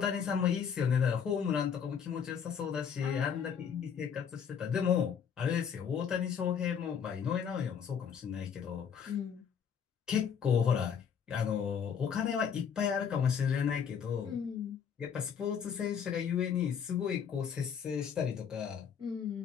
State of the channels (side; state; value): right; quieter; 7.4 dB